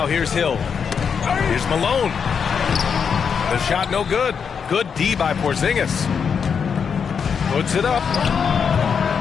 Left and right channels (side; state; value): right; quieter; 6.6 dB